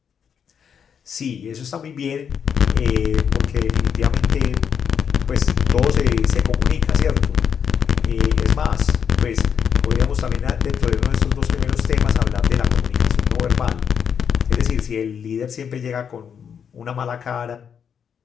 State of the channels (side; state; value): right; quieter; 7.5 dB